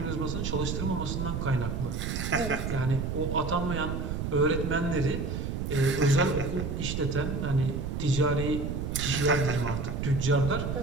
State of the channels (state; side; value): noise; right; rumble, 2 dB below the sound